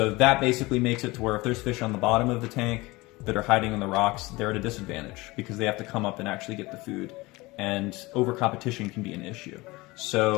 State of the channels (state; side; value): quieter; right; 22.0 dB